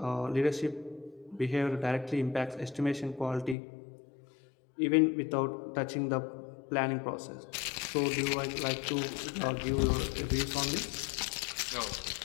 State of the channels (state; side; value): drops out; right; at 3.6 s